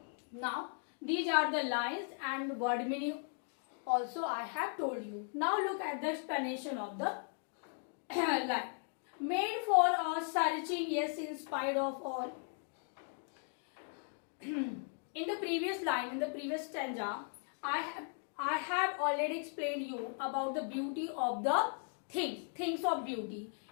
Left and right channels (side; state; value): right; silent; 53 dB below the other